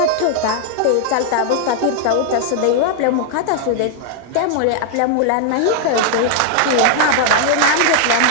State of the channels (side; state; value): both; different; correlation 0.00